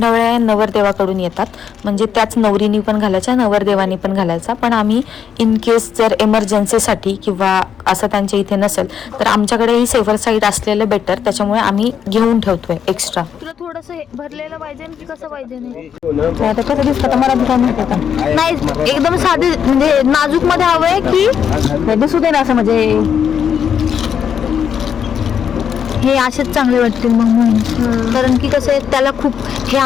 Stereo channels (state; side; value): quieter; right; 8.0 dB